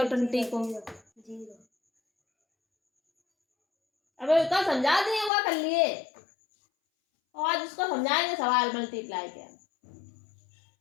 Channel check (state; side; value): drops out; right; at 5.3 s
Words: 20 को। अबे उसका समझा दिए हुआ कर लिए, और आज उसको समझाएंगे सवाल मल्टीप्लाई के।